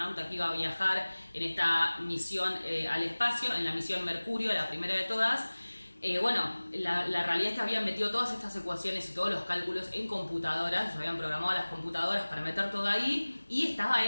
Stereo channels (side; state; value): both; inverted; correlation -1.00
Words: que iba a viajar en esta misión al espacio, en la misión Mercurio, la primera de todas, Bueno, la realidad es que habían metido todas estas ecuaciones y todos los cálculos en computadoras, ellos habían programado las computadoras para meter todo ahí, y estaba